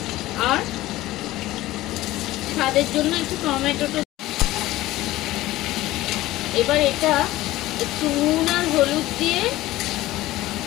আর স্বাদের জন্য একটু টমেটোটা। এবার এটা একটু নুন আর হলুদ দিয়ে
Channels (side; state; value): right; quieter; 16.8 dB